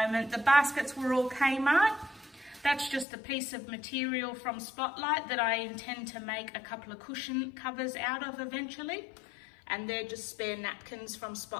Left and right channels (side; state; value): right; drops out; at 3.1 s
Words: The baskets were all Kmart. That's just a piece of material from Spotlight that I intend to make a couple of cushion covers out of eventually. And they're just spare napkins from